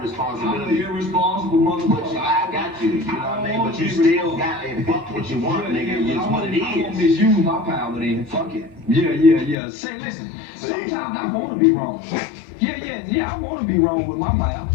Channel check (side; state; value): right; drops out; at 9.6 s